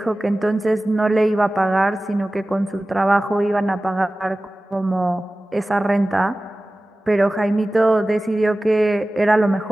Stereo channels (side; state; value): both; normal; correlation 0.97